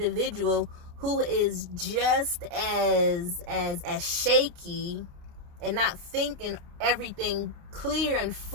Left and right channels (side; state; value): left; late; 29 ms